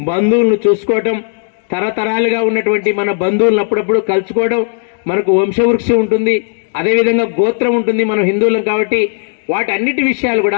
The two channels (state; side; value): silent; right; 58 dB below the other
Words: చూసుకోవటం, తరతరాలుగా ఉన్నటువంటి మన బంధువులను అప్పుడప్పుడు కలుసుకోవడం, మనకు వంశవృక్షం ఉంటుంది, అదేవిధంగా గోత్రం ఉంటుంది, మనం హిందువులం కాబట్టి వాటన్నిటి విషయాలు